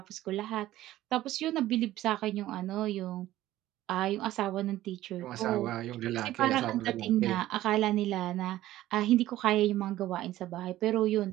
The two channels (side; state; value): left; quieter; 14.8 dB